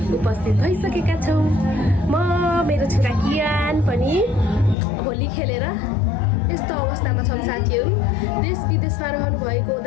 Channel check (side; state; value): right; drops out; at 4.8 s